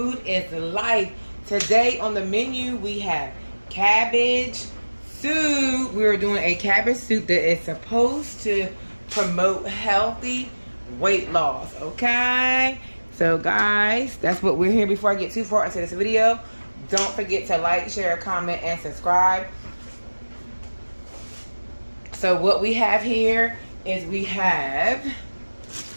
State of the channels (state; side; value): inverted; both; correlation -1.00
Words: is life. Today on the menu we have cabbage soup. We're doing a cabbage soup that is supposed to promote healthy weight loss, okay? So guys, that's what we're here. Before I get too far into this video, don't forget to like, share, comment, and subscribe. So what we have here is we have